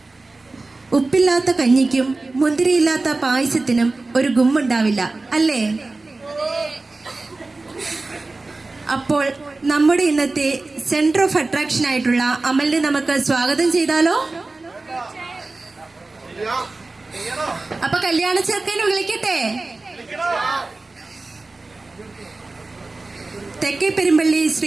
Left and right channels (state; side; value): quieter; left; 3.4 dB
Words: ഉപ്പില്ലാത്ത കഞ്ഞിക്കും മുന്തിരിയില്ലാത്ത പായസത്തിനും ഒരു ഗുമ്മുണ്ടാവില്ല, അല്ലേ? അപ്പോൾ നമ്മുടെ ഇന്നത്തെ സെന്റർ ഓഫ് അട്രാക്ഷൻ ആയിട്ടുള്ള അമലിനെ നമുക്ക് സ്വാഗതം ചെയ്താലോ? അപ്പൊ കല്യാണ ചെറുക്കനെ വിളിക്കട്ടെ. തെക്കേ പെരുമ്പള്ളി